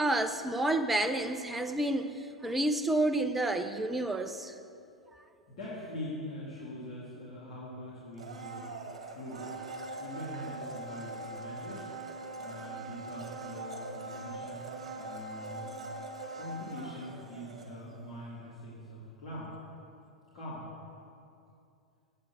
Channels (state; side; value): normal; both; correlation 0.52